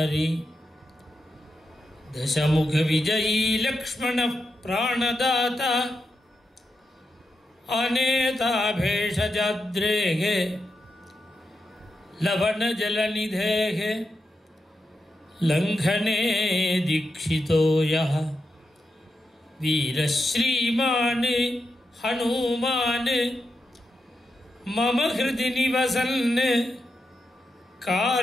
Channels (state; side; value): normal; both; correlation 0.87